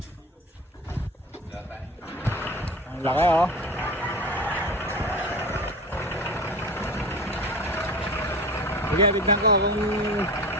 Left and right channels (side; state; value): both; normal; correlation 0.32